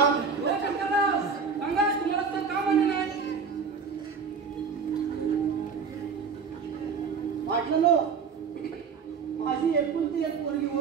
हो शंकरराव, सांगा तुम्हाला तर का मान्य नाही? वाटलं माझी एकुलती एक पोरगी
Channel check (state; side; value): quieter; left; 5.6 dB